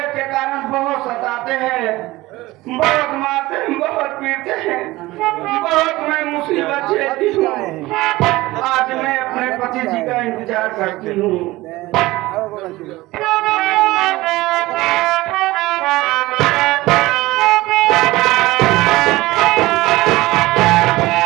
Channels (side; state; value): left; quieter; 19.0 dB